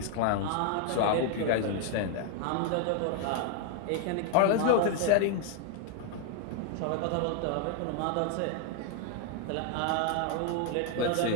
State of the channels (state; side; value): different; both; correlation 0.00